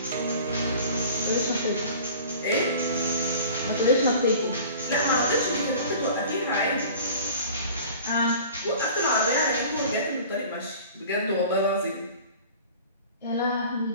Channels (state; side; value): inverted; both; correlation -0.43